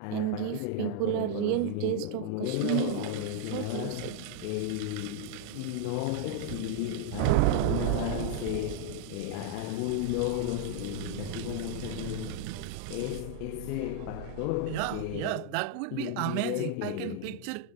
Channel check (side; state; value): both; different; correlation -0.01